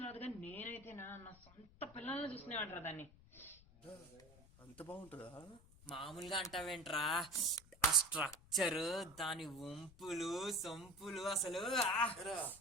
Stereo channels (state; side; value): noise; left; rumble, 23 dB below the sound